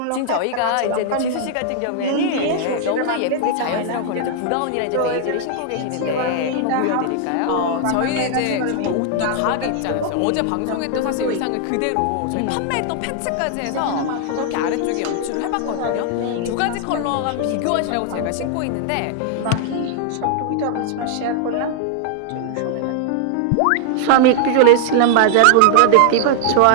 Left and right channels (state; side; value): different; both; correlation 0.00